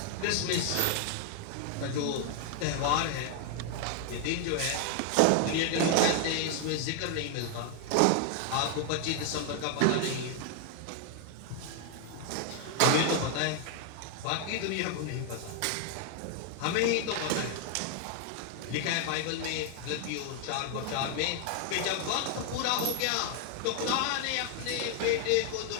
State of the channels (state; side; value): different; both; correlation 0.00